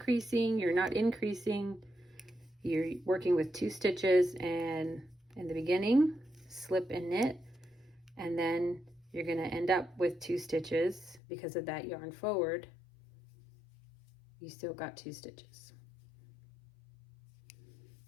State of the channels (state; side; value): drops out; right; at 11.2 s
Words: you're not increasing, you're working with 2 stitches, and in the beginning, slip and knit. And then you're going to end up with 2 stitches because of that yarn forward. You still got 2 stitches.